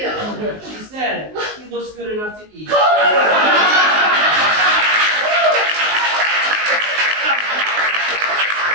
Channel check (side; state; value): left; late; 19 ms